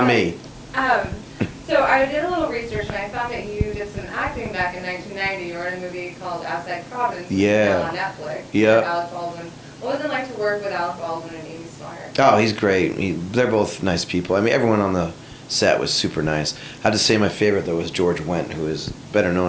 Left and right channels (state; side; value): identical; both; correlation 1.00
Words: me. So I did a little research and I found that you did some acting back in 1990. You were in a movie called Outside Providence, which is now on Netflix. Yeah. With Alec Baldwin. What was it like to work with Alec Baldwin and Amy Smart? Oh, he's great. They're both nice people. I mean, everyone on the set was super nice. I have to say my favorite, though, was George Wendt, who is better